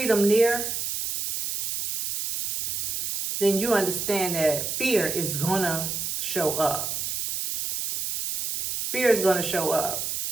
near, then you understand that fear is gonna show up. Fear is gonna show up,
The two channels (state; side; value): noise; right; hiss, 3 dB below the sound